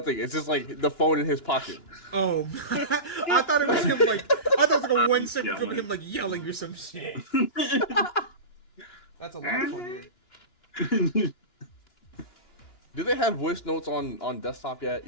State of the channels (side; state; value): right; late; 2.9 ms